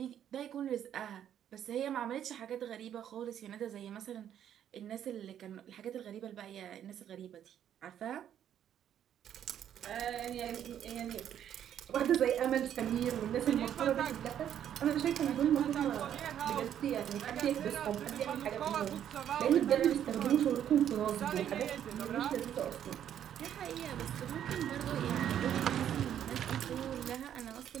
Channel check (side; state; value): left; quieter; 10.0 dB